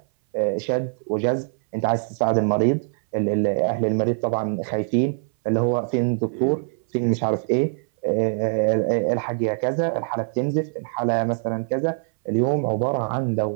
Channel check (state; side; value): silent; left; 60 dB below the other